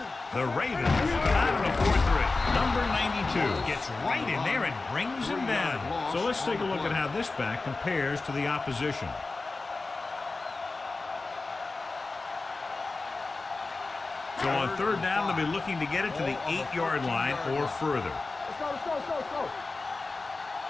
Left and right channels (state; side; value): quieter; right; 3.6 dB